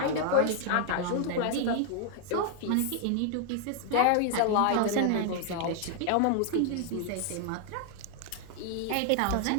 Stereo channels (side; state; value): both; different; correlation 0.00